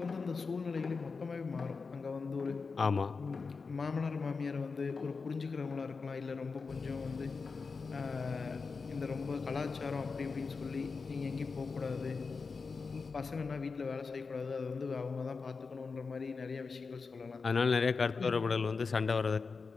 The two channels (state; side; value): quieter; right; 4.7 dB